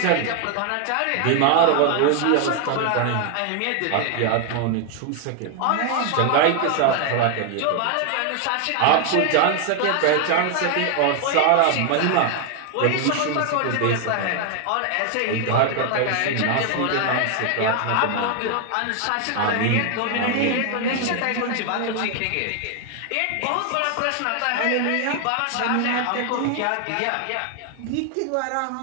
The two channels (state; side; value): different; both; correlation 0.00